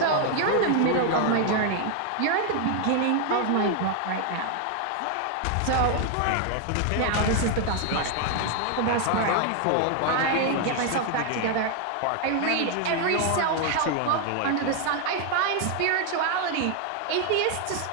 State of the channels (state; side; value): different; both; correlation 0.00